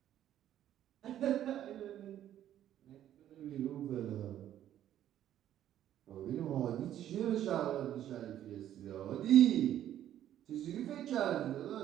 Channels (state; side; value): quieter; left; 11.5 dB